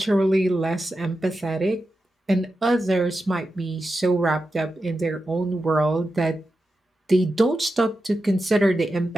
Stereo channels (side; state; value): both; normal; correlation 0.90